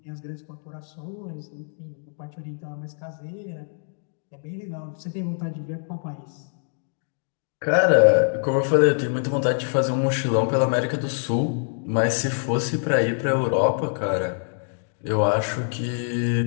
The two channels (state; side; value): silent; right; 62 dB below the other